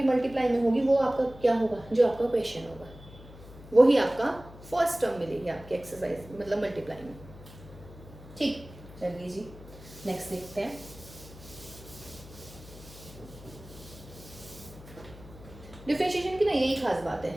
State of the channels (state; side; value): noise; left; hum, 18 dB below the sound